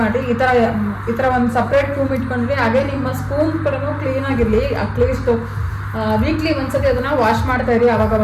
ಮಾಡಿ ಈ ಥರ ಒಂದು ಸಪ್ರೇಟ್ ರೂಮ್ ಇಟ್ಕೊಂಡ್ರಿ. ಹಾಗೆ ನಿಮ್ಮ ಸ್ಪೂನ್ ಕೂಡ ಕ್ಲೀನಾಗಿರಲಿ, ಅಟ್ಲೀಸ್ಟ್ ವೀಕ್ಲಿ ಒಂದ್ಸತಿ ಅದನ್ನು ವಾಶ್ ಮಾಡ್ತಾ ಇರಿ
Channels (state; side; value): identical; both; correlation 1.00